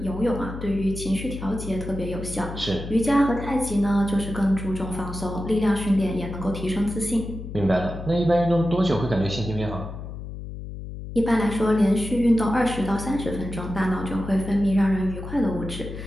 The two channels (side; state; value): left; noise; hum, 9 dB below the sound